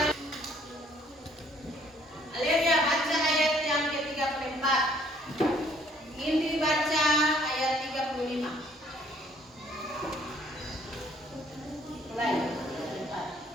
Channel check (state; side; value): normal; both; correlation 0.62